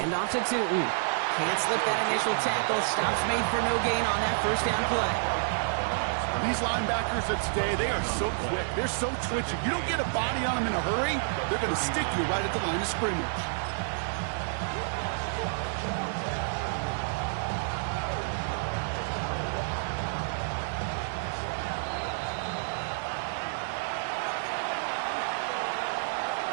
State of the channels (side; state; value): left; silent; digital silence